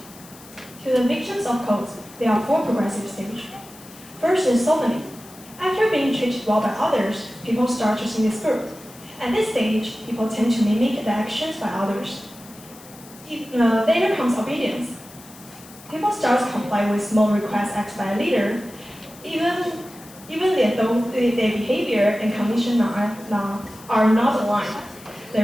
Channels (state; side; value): noise; left; hiss, 21 dB below the sound